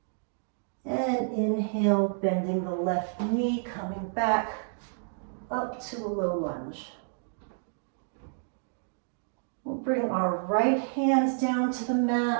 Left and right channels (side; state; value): left; silent; digital silence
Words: And inhale, bending the left knee, coming back up to a low lunge. We'll bring our right hands down to the